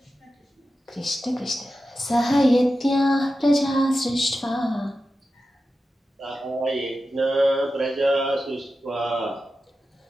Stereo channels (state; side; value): normal; both; correlation 0.92